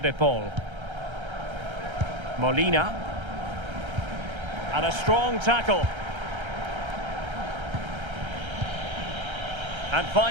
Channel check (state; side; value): late; left; 1.3 ms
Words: de Paul. Molina. And a strong tackle. And